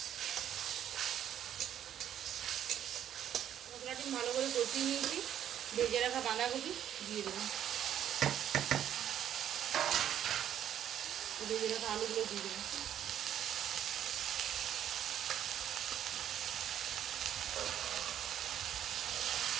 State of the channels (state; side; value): quieter; left; 10.3 dB